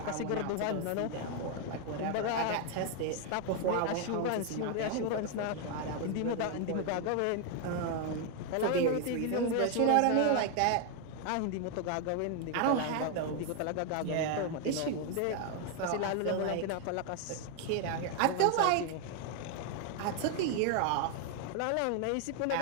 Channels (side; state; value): both; different; correlation 0.00